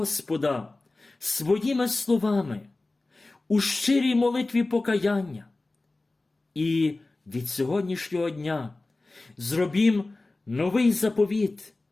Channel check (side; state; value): right; quieter; 3.1 dB